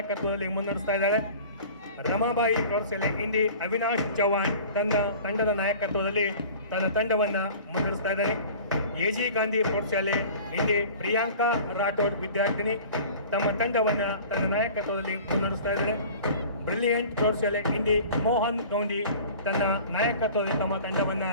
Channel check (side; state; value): both; inverted; correlation -0.42